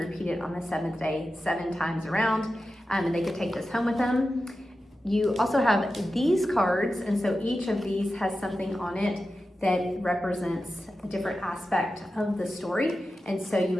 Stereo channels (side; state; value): both; normal; correlation 0.92